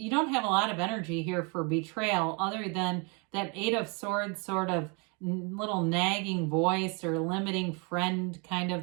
don't have a lot of energy here for betrayal other than that Eight of Swords sort of little nagging voice or limiting friend kind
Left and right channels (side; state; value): left; quieter; 32.9 dB